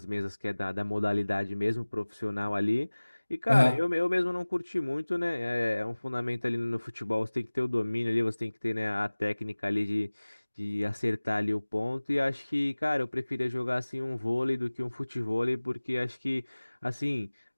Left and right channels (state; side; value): inverted; both; correlation -1.00